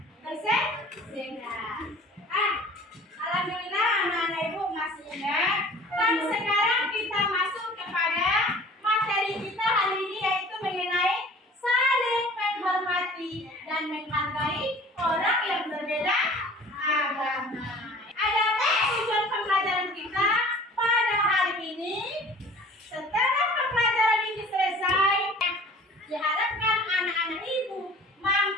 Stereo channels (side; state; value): both; normal; correlation 0.46